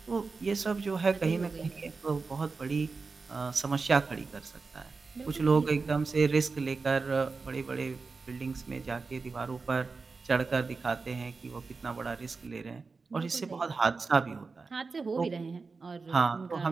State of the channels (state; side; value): quieter; left; 4.3 dB